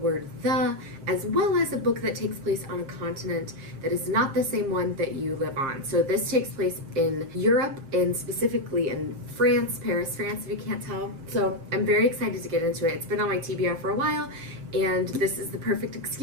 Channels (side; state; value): left; late; 7.5 ms